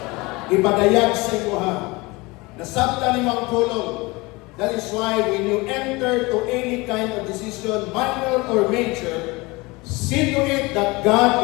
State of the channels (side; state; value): right; quieter; 23.8 dB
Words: Ipadayag sa iyo ha, nasabta ni Mang Pulong. That is why when you enter to any kind of decision, minor or major, see to it that